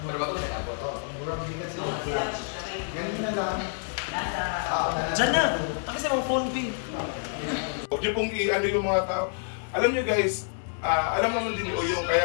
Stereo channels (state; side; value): silent; right; 60 dB below the other